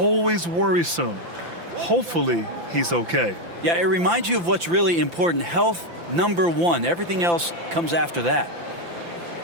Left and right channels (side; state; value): left; late; 5.9 ms